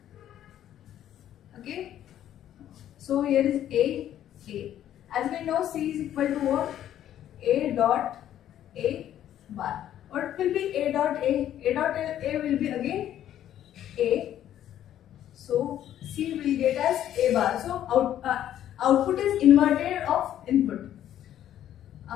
Okay. So here is A. As we know, C is equal to what? A dot A bar. What will be A dot A? A dot A will be again A. So C will get as A bar. So output is inverted of input.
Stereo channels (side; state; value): right; quieter; 11.4 dB